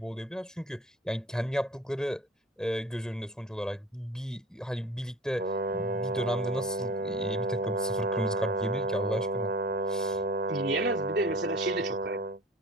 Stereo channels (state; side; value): normal; both; correlation 0.41